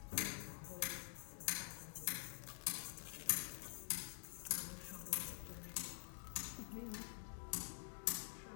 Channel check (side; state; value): right; silent; digital silence